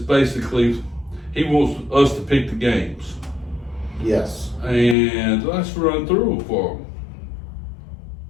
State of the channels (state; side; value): drops out; right; at 5.0 s